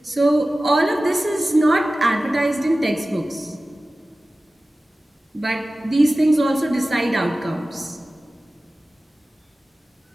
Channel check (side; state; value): both; normal; correlation 0.96